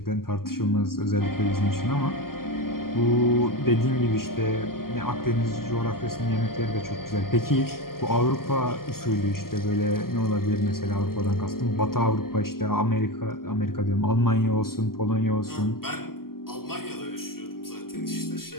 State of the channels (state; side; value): late; right; 0.92 ms